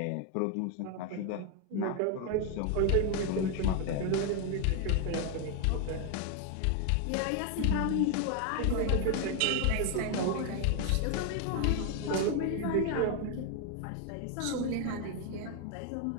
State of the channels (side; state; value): both; different; correlation 0.01